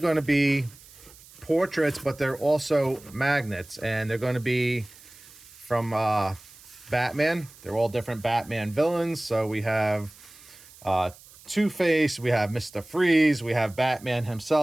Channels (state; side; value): noise; right; hiss, 22 dB below the sound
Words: to be portraits, but they're also magnets, and they're going to be from Batman. They're all different Batman villains. So we have Two-Face, we have Mr. Freeze, we have Batman